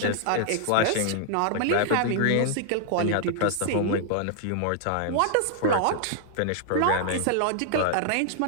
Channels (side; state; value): both; different; correlation -0.01